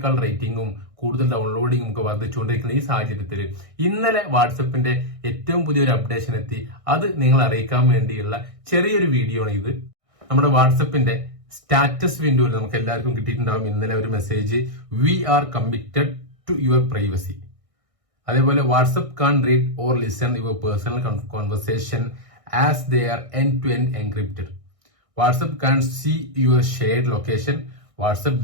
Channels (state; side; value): late; left; 1.6 ms